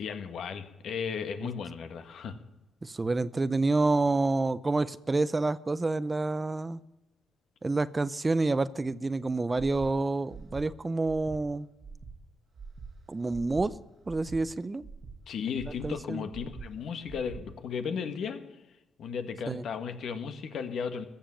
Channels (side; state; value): both; normal; correlation 0.91